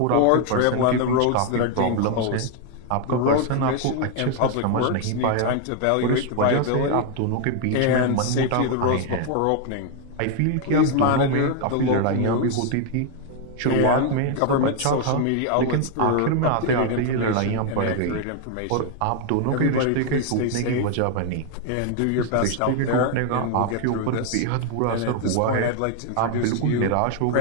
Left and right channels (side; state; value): both; different; correlation 0.00